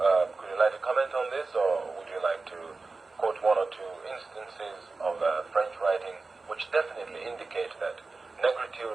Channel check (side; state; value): left; quieter; 3.8 dB